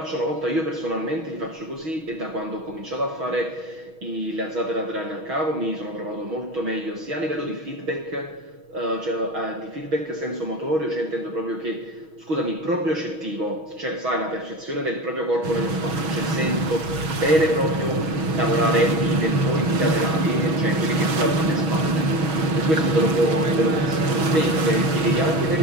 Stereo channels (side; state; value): left; late; 6.3 ms